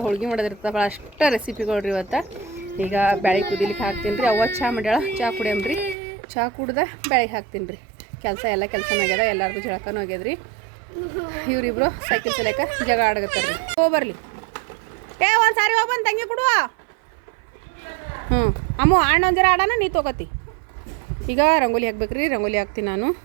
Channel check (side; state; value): left; drops out; at 6.0 s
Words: ಹೋಳ್ಗೆ ಮಾಡೋದಿರ್ತದೆ, ಭಾಳ ಅಷ್ಟು ರೆಸಿಪಿಗಳು ರೀ ಇವತ್ತು. ಈಗ ಬೇಳೆ ಕುದಿಲಿಕ್ಕೆ ಹಾಕ್ತೀನಿ ರೀ. ಅವ್ವ ಚಹಾ ಮಾಡ್ಯಾಳ, ಚಹಾ ಕುಡಿಯಮ್ರಿ. ಚಹಾ ಕುಡ್ದೆ ಬೇಳೆಗೆ ಹಾಕ್ತೀನಿ ರೀ. ಎಲ್ಲ ಕೆಲಸನೂ ಆಗ್ಯದ, ಎಲ್ಲರಿಗೂ ಜಳಕನೂ ಆಗ್ಯದ್ರಿ. ಇವರಿಬ್ರು ಸೈಕಲ್ ಚಲಾಕ ಜಗ ಆಡಗತ್ತಾರ ರೀ. ಹೋಗ್ಬರ್ಲಿ ಒಂದು ಸಾರಿ ಹೋಗ್ಬಂದು ತಂಗಿ ಕೊಡುವ. ಅಮ್ಮ ಅಣ್ಣ ಒಂದು ಜರ ಆಡೋಣ, ನೀ ತೊಗೋತಿ. ಈಗ ರಂಗೋಲಿ ಹಾಕ್ಬೇಕ್ರಿ. ರಂಗೋಲಿ ಹಾಕ್ತೀನಿ ನಾನು.